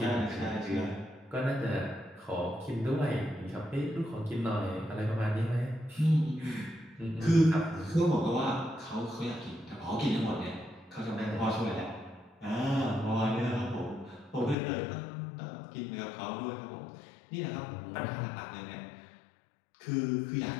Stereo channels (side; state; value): right; drops out; at 14.6 s